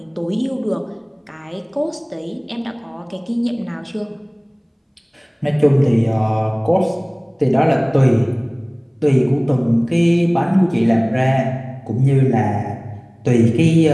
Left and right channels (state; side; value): identical; both; correlation 1.00